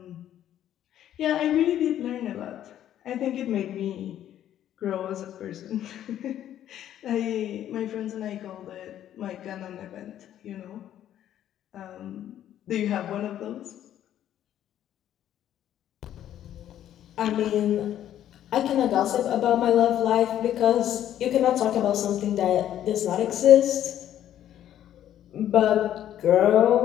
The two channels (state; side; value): quieter; right; 11.3 dB